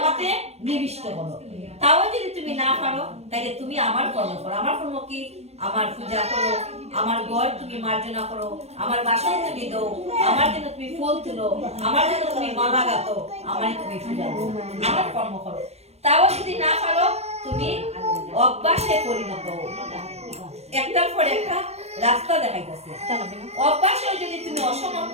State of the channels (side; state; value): left; late; 0.31 ms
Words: নিবিষ্ট করো। তাও যদি তুমি না পারো তাহলে তুমি আমার কর্ম করো। আমার কর্ম কি? আমার পূজা করো, আমার ঘর তুমি মার্জনা করো, আমার বাসন তুমি দাও, আমার জন্য তুমি ফুল তুলো, আমার জন্য তুমি মালা গাতো, আমারই তুমি পূজা করো, আমার কর্ম করো। তাও যদি না পারো তুমি অভ্যাসে পরিণত হও। একটার পর একটা রাস্তা দেখাইতেছে। অভ্যাসে যদি তুমি অসমর্থ